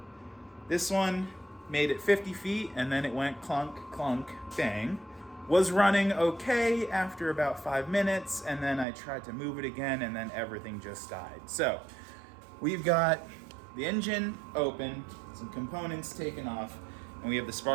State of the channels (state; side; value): drops out; left; at 8.8 s